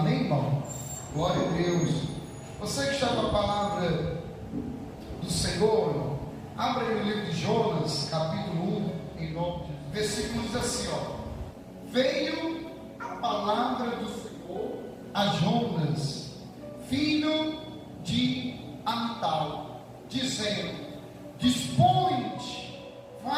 irmão? Glória a Deus. Você que está com a palavra do Senhor, abra aí o livro de Jonas, capítulo 1, em nome de Deus. Versículo diz assim, veio a palavra do Senhor a Jonas, filho de Amital, dizendo: dispõe-te,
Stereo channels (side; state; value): both; identical; correlation 1.00